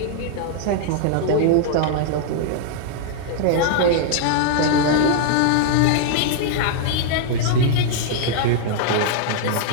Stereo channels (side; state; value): both; different; correlation -0.01